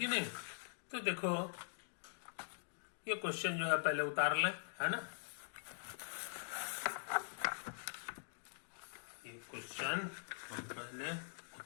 नहीं। तो देखो ये क्वेश्चन जो है पहले उतार लें, है ना, ये क्वेश्चन हम पहले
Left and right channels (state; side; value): silent; right; digital silence